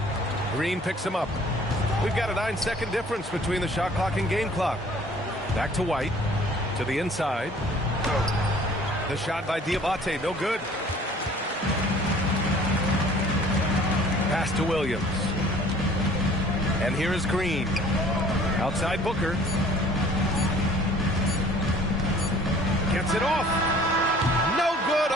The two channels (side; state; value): both; normal; correlation 0.52